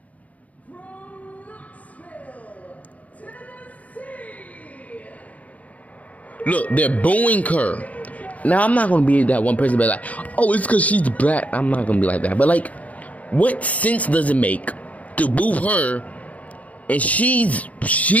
Look, they're booing her. Now, I'm not going to be that one person be like, oh, it's because she's black. I'm not going to be like that. But, like, what sense does it make to boo her? And she was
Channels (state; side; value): late; right; 0.070 ms